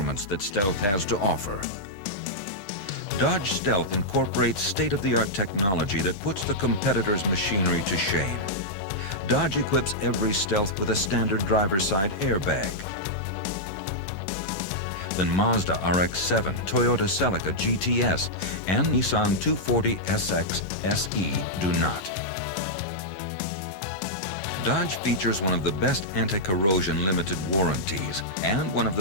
that Stealth has to offer. Dodge Stealth incorporates state-of-the-art technology that puts the competitor's machinery to shame. Dodge equips every Stealth with a standard driver's side airbag. Then Mazda RX-7, Toyota Celica GTS, and Nissan 240SX SE do not. Dodge features one of the best anti-corrosion limited warranties and one of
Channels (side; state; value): right; late; 11 ms